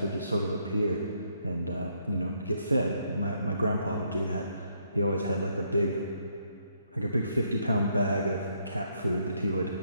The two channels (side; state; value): both; inverted; correlation -0.72